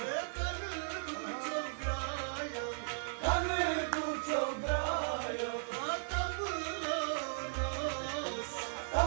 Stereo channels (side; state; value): left; silent; digital silence